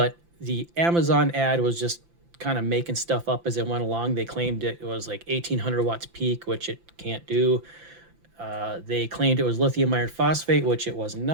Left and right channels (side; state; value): left; late; 5.9 ms